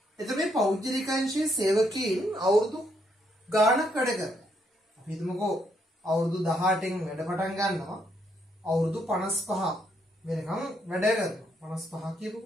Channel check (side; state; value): both; normal; correlation 0.74